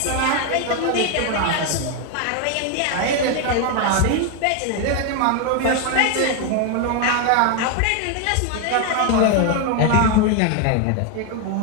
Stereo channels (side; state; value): both; different; correlation 0.01